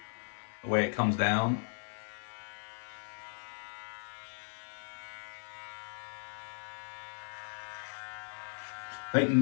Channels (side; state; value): right; silent; 53 dB below the other